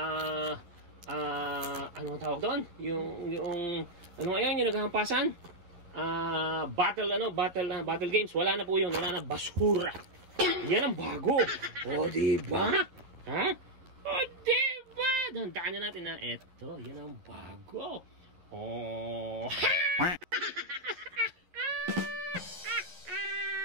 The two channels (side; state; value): left; late; 11 ms